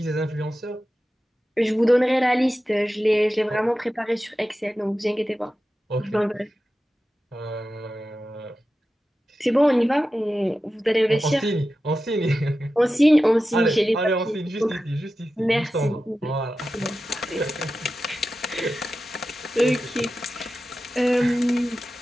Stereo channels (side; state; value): both; normal; correlation 0.93